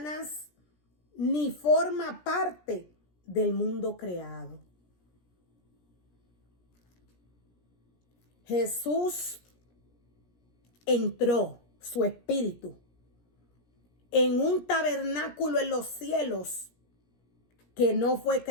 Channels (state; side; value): late; right; 17 ms